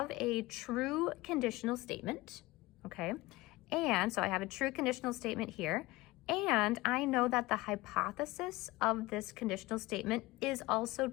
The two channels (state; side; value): quieter; right; 20.1 dB